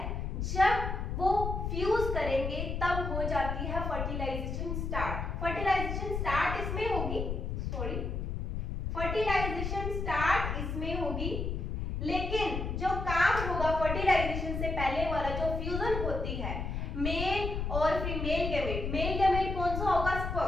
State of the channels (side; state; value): left; noise; rumble, 3 dB below the sound